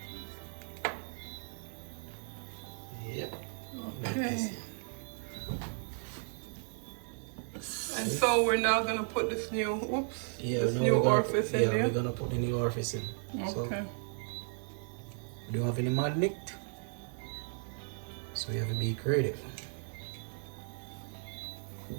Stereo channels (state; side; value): silent; left; 54 dB below the other